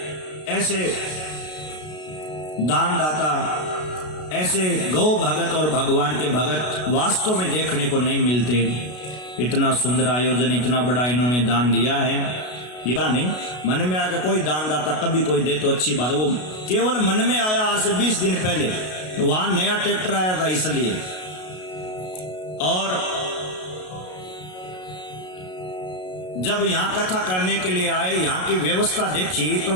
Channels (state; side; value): late; right; 33 ms